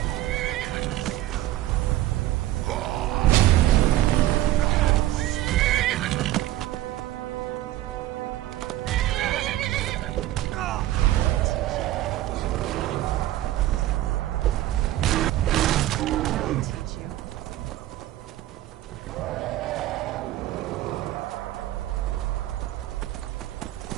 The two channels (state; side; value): quieter; left; 14.7 dB